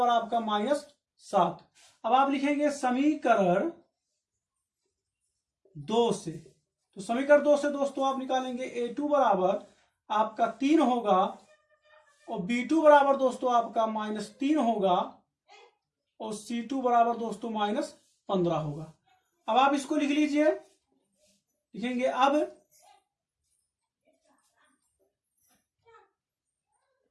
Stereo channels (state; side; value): identical; both; correlation 1.00